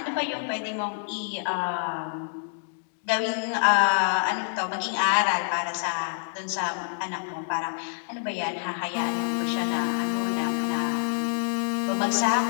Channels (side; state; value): right; silent; digital silence